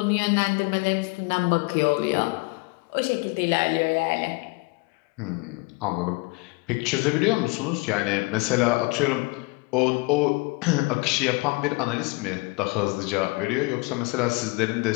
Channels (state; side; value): quieter; right; 26.9 dB